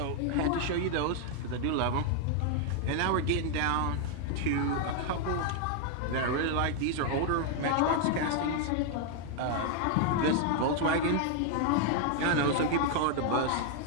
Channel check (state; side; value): different; both; correlation 0.00